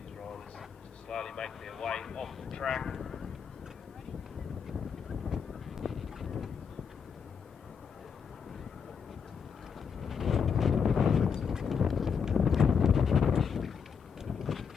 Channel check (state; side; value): quieter; right; 6.5 dB